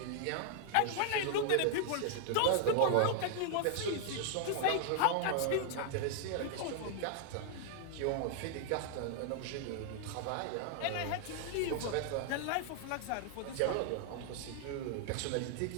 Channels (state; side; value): different; both; correlation 0.00